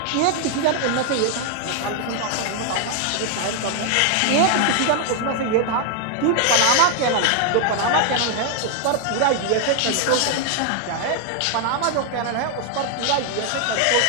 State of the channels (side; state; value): both; different; correlation 0.00